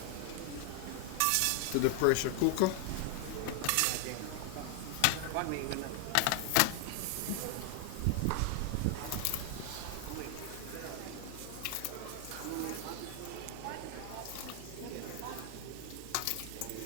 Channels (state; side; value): different; both; correlation 0.00